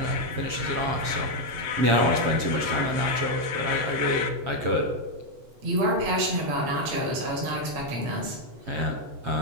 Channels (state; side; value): late; left; 7.4 ms